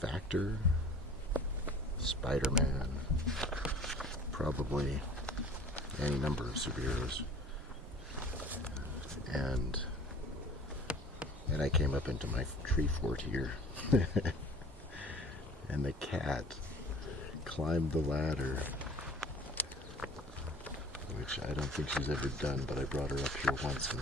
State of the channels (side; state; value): both; normal; correlation 0.47